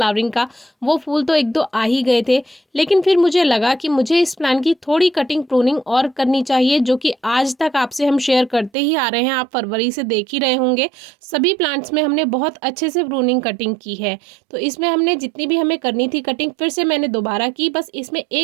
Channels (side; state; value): left; drops out; at 8.7 s